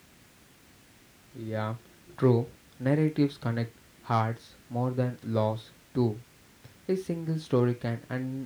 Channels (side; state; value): both; identical; correlation 1.00